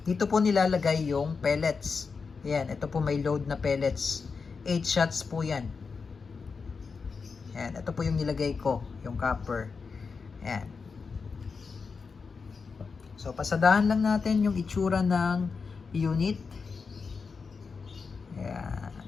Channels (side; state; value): right; quieter; 5.0 dB